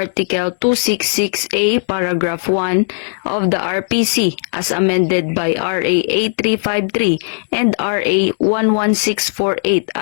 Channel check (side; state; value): right; silent; 68 dB below the other